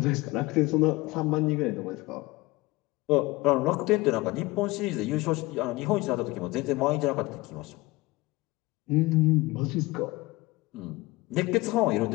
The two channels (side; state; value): right; quieter; 21.1 dB